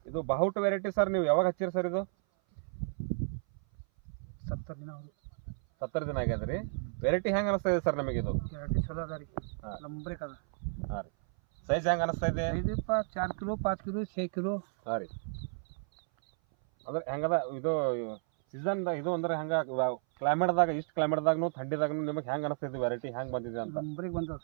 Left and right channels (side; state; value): left; silent; 56 dB below the other